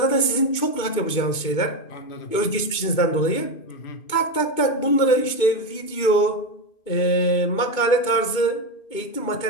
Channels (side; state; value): right; late; 2.2 ms